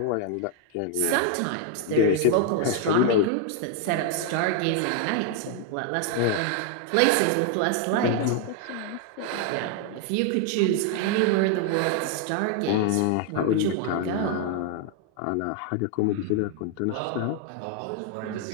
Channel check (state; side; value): different; both; correlation 0.00